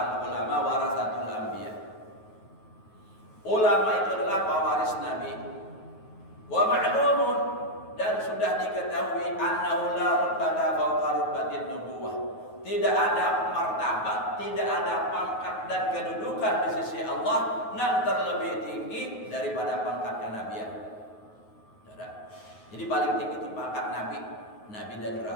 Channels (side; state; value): right; late; 9.4 ms